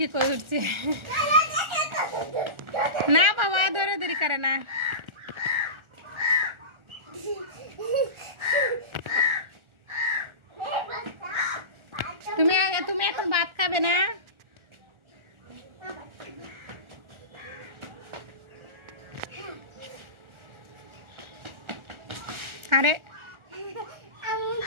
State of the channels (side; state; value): left; late; 1.4 ms